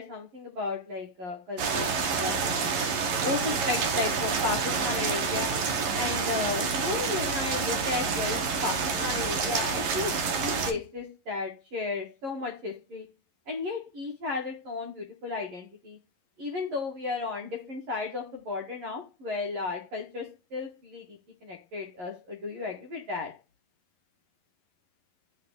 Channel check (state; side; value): late; left; 11 ms